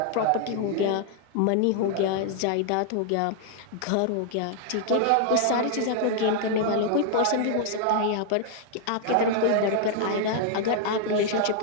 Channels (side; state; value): both; different; correlation 0.00